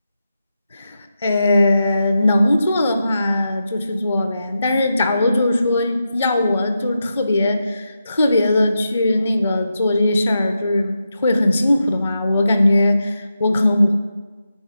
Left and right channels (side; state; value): both; inverted; correlation -0.88